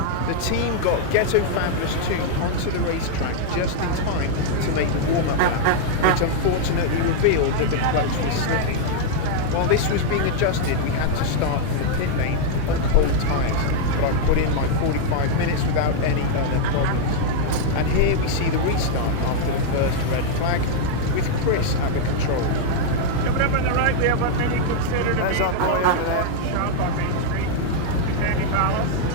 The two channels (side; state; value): both; different; correlation 0.00